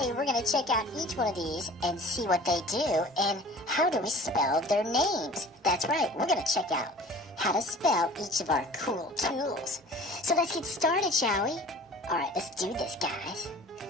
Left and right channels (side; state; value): both; normal; correlation 0.45